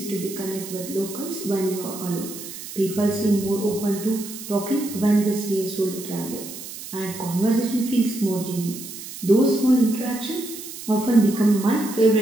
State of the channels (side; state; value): right; noise; hiss, 12 dB below the sound